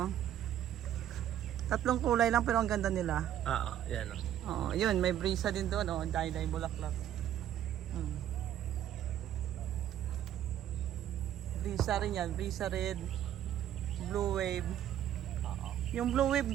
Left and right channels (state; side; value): quieter; left; 11.2 dB